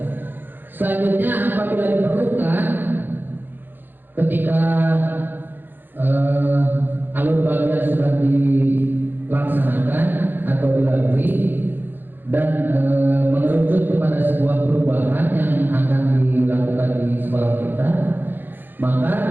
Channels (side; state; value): left; late; 0.094 ms